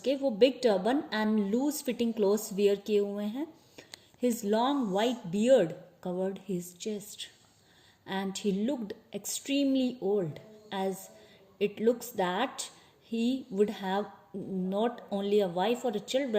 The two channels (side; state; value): both; identical; correlation 1.00